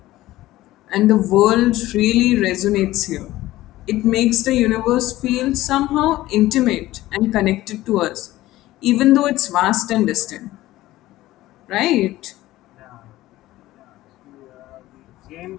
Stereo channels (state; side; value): quieter; right; 16.3 dB